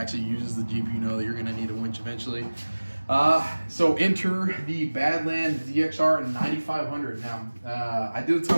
uses the Jeep, you know that you're gonna need a winch eventually. So enter the Badlands DXR 9500. Now, I did a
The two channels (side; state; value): both; inverted; correlation -1.00